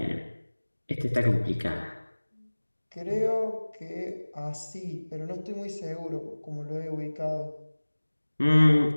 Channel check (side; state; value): both; inverted; correlation -1.00